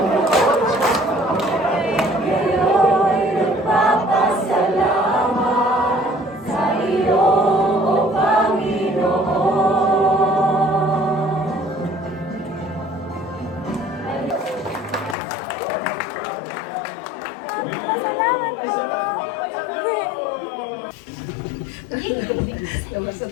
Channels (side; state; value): right; drops out; at 15.2 s